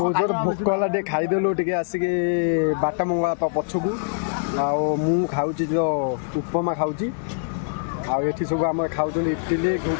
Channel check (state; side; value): silent; right; digital silence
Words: ଜୋର ଭୋକ ହେଲା, ଟିକେ ଖାଇଦେଲୁ ଟିକେ ଆସିକି ବାଟ ମଙ୍ଗଳା ପଛକୁ। ଆଉ ମୁଁ ଖାଉଛି ତ ଉପମା ଖାଉଛି। ଆଉ ଏଠି ସବୁ ଆମର ଖାଉଛନ୍ତି ଇଟିଲି